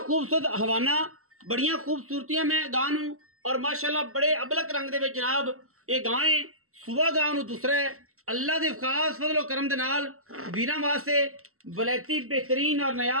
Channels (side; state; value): left; late; 0.63 ms